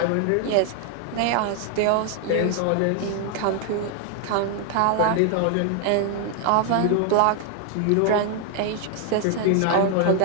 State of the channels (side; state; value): both; different; correlation 0.00